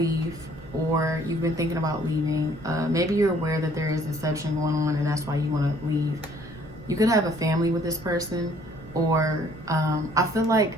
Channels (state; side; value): noise; right; rumble, 23 dB below the sound